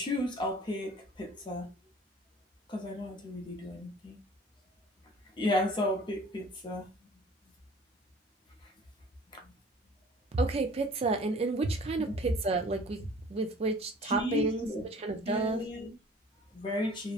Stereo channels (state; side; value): normal; both; correlation 0.48